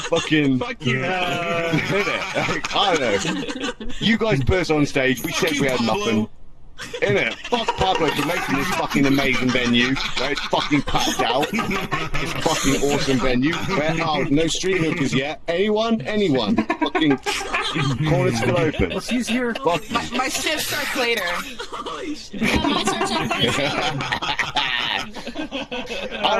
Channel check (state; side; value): identical; both; correlation 1.00